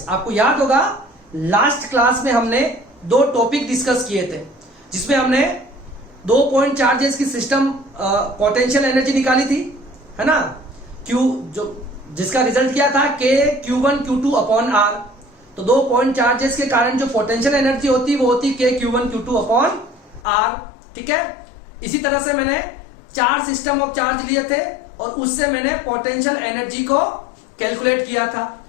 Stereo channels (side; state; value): right; drops out; at 20.2 s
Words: आपको याद होगा लास्ट क्लास में हमने दो टॉपिक डिस्कस किए थे जिसमें हमने 2 पॉइंट चार्जेस की सिस्टम पोटेंशियल एनर्जी निकाली थी, है ना। Q जो जिसका रिजल्ट क्या था K Q1 Q2 upon R। तो 2 पॉइंट चार्जेस के कारण जो पोटेंशियल एनर्जी होती वो होती K Q1 Q2 upon R, ठीक है। इसी तरह से मैंने 4 सिस्टम ऑफ चार्ज लिए थे और उससे मैंने पोटेंशियल एनर्जी को कैलकुलेट किया था